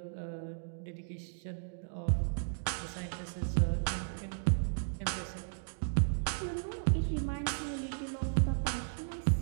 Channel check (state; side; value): silent; left; digital silence